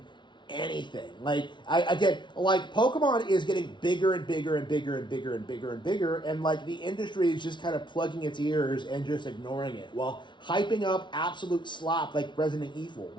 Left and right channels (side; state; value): right; late; 0.23 ms